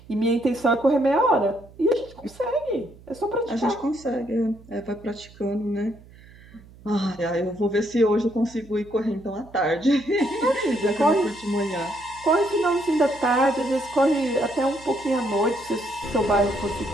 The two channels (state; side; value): noise; right; hum, 23 dB below the sound